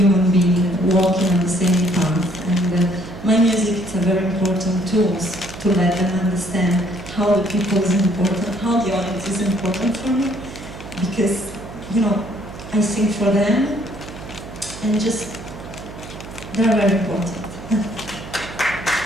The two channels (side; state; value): right; noise; hum, 13 dB below the sound